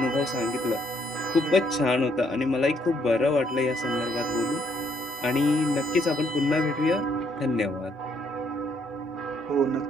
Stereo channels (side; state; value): both; normal; correlation 0.69